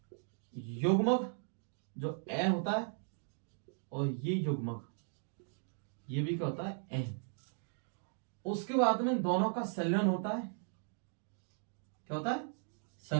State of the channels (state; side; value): silent; left; 53 dB below the other